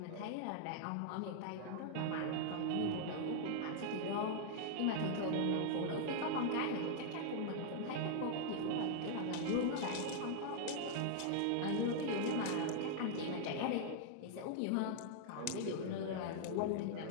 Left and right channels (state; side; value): different; both; correlation -0.01